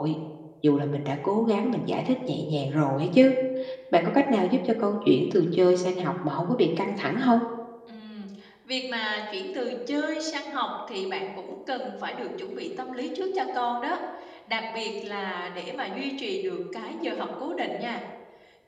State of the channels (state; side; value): identical; both; correlation 1.00